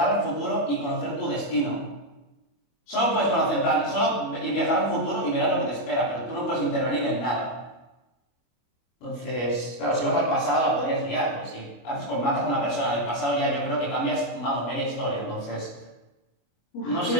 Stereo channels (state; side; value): late; right; 24 ms